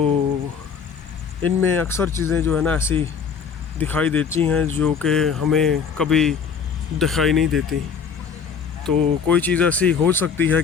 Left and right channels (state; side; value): quieter; right; 6.4 dB